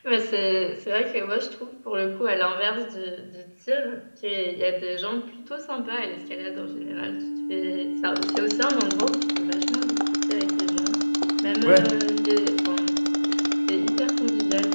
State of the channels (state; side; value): inverted; both; correlation -1.00